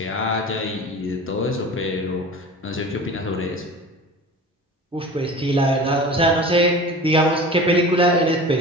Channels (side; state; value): both; normal; correlation 0.37